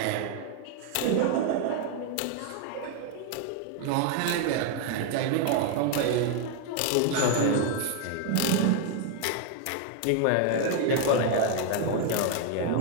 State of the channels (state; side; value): different; both; correlation 0.00